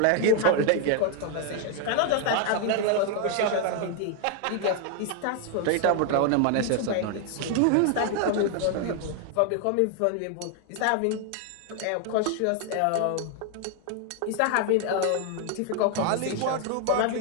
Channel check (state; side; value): different; both; correlation 0.00